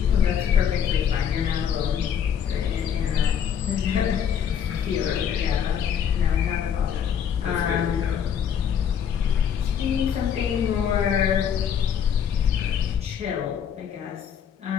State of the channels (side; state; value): right; quieter; 8.2 dB